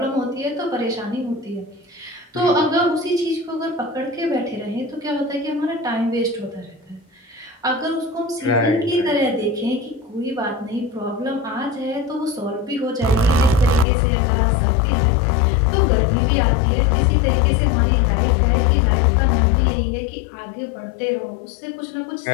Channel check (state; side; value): drops out; right; at 13.9 s